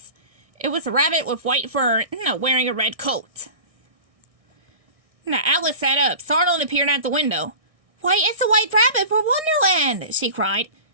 It was a rabbit with white fur, wearing a red coat. Alice sat up, startled, and appeared at the window. "Why, it's a white rabbit from Wonderland!" she cried.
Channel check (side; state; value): left; late; 1.6 ms